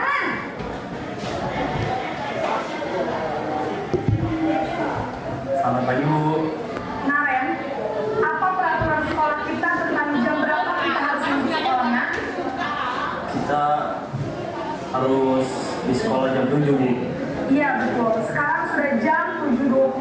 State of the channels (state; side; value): identical; both; correlation 1.00